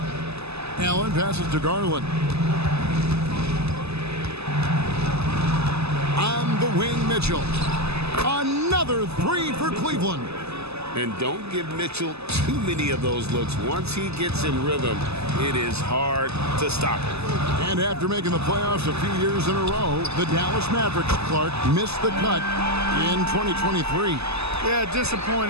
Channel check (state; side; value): late; left; 0.79 ms